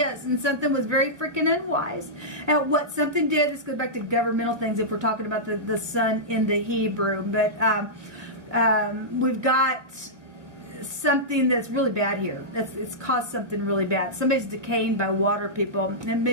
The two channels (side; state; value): left; late; 2.0 ms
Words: and something was very freaking unwise. And what something did, this goes back to governmental things if we're talking about the sun in the Hebrew. But we've got something that's really bad here. It's caused something really bad. Somebody's decaying by water, people. And